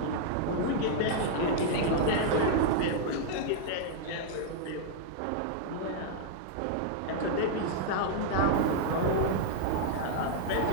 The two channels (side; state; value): both; different; correlation -0.01